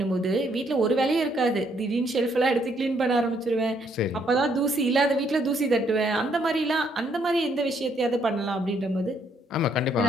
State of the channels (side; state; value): both; normal; correlation 0.70